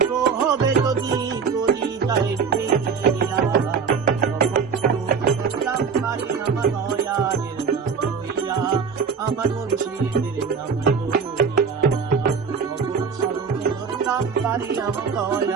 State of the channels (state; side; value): quieter; left; 5.8 dB